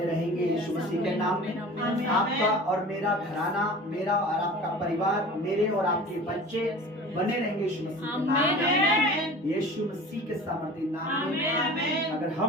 रहेंगे यीशु मसीह के नाम में। आपका और मेरा घराना, मेरा और आपका परिवार, मेरे और आपके बच्चे बने रहेंगे यीशु मसीह के नाम में, यीशु मसीह के सामर्थ्य नाम में। अगर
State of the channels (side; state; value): both; normal; correlation 0.39